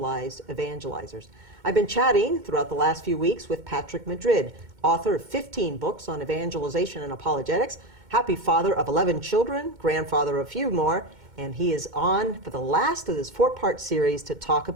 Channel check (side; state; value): left; late; 2.2 ms